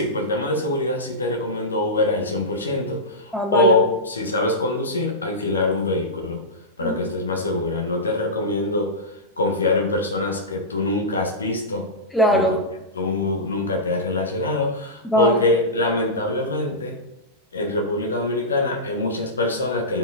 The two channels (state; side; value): normal; both; correlation -0.15